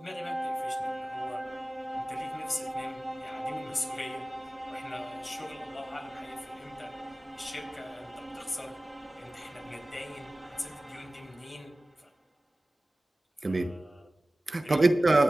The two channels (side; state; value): both; normal; correlation 0.97